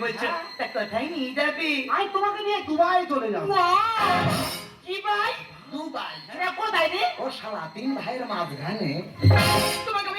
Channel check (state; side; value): identical; both; correlation 1.00